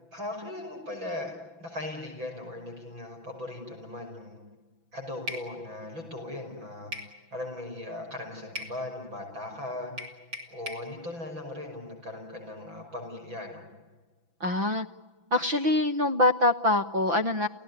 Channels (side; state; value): left; late; 6.0 ms